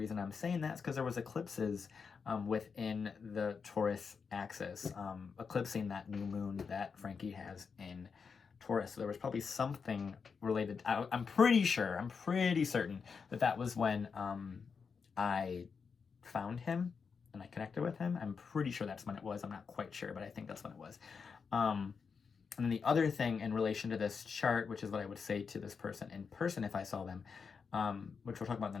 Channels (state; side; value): quieter; right; 5.6 dB